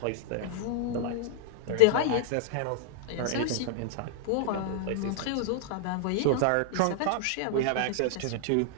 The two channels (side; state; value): both; different; correlation -0.01